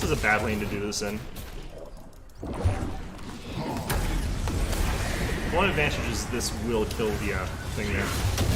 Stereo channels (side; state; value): both; identical; correlation 1.00